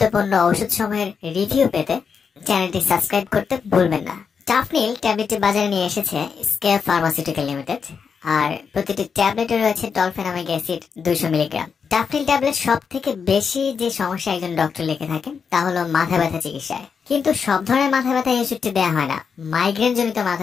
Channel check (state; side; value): quieter; right; 6.2 dB